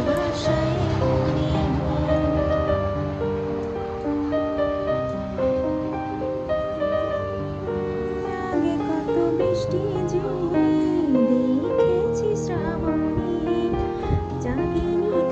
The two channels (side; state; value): both; identical; correlation 1.00